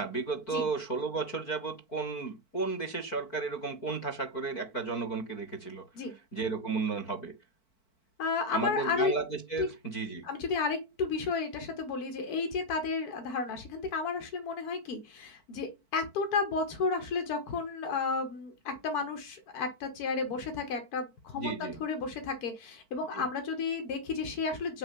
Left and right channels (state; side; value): late; right; 4.5 ms